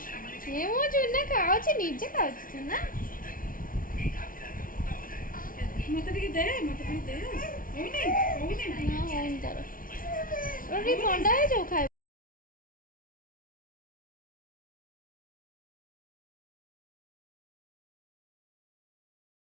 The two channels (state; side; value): late; right; 0.40 ms